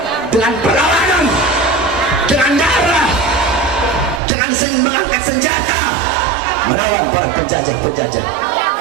dengan perlawanan, dengan darah, dengan mengangkat senjata melawan para penjajah-penjajah.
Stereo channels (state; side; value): drops out; left; at 4.2 s